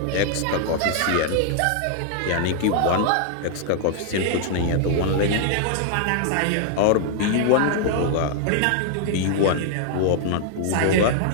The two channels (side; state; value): both; different; correlation 0.00